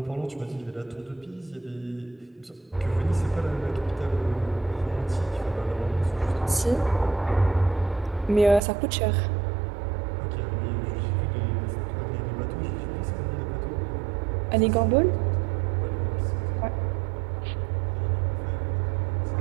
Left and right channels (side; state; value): left; drops out; at 8.6 s